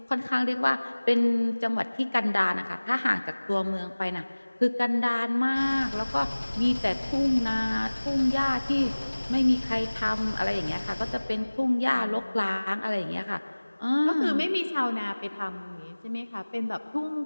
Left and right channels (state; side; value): inverted; both; correlation -1.00